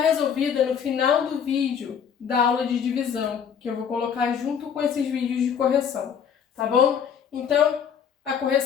no final do vídeo da aula de divisão, que eu vou colocar junto com esses vídeos de correção, tá bom? Então, a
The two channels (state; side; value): quieter; right; 7.6 dB